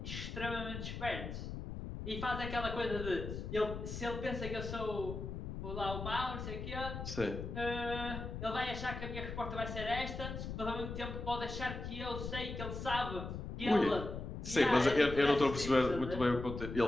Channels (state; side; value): noise; left; rumble, 6 dB below the sound